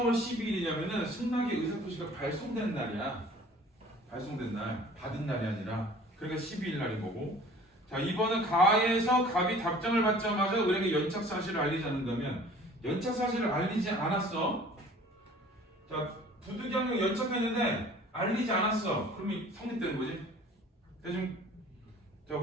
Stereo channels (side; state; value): both; normal; correlation 0.49